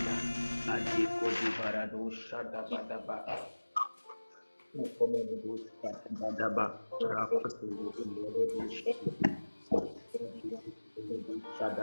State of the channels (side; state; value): both; inverted; correlation -1.00